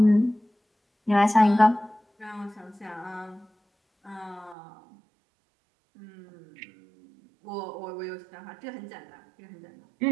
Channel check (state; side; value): drops out; left; at 4.5 s